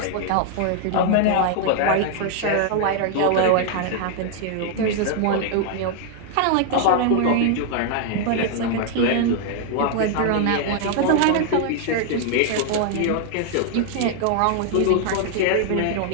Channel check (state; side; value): different; both; correlation 0.00